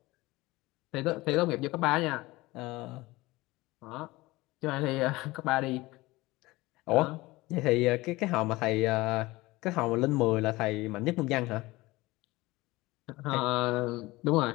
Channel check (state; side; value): quieter; right; 20.4 dB